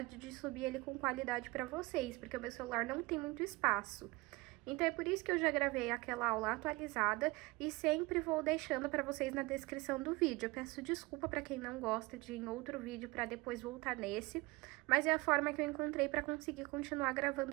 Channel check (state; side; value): quieter; left; 23.1 dB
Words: de subir ele com qualidade para vocês, porque o meu celular não tem muito espaço. Então, é por isso que eu já gravei aquela aula atualizada e sempre vou deixando para vocês na descrição do vídeo. Eu peço desculpa para quem não gosta de ir em outro vídeo para depois voltar nesse, mas é a forma que eu encontrei para conseguir continuar